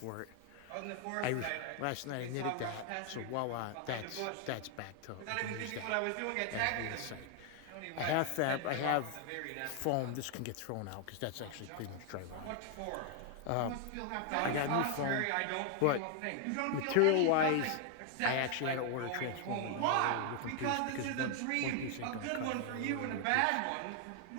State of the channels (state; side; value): different; both; correlation 0.00